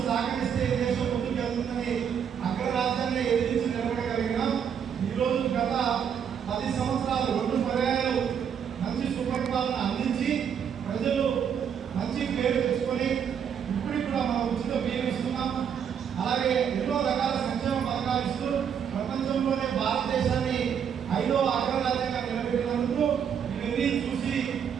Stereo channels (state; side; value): quieter; left; 8.0 dB